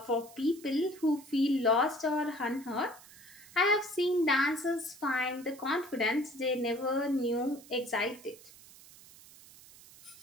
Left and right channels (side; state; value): right; noise; hiss, 21 dB below the sound